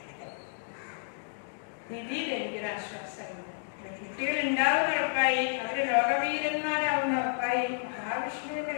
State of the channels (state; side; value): silent; right; digital silence